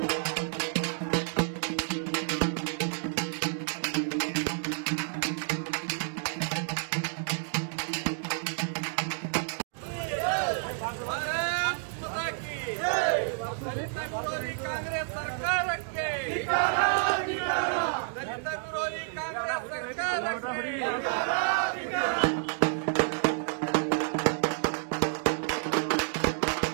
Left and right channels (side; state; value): left; silent; digital silence